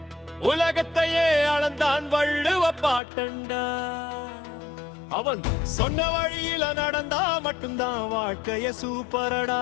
உலகத்தையே அளந்தான் வள்ளுவ பாட்டண்டா. அவன் சொன்ன வழியில நடந்தா மட்டும்தான் வாழ்க்கைய சூப்பரடா.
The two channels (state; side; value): drops out; right; at 3.0 s